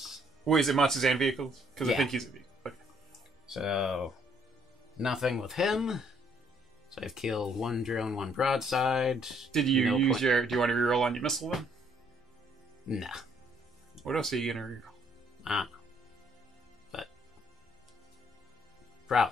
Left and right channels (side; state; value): both; normal; correlation 0.66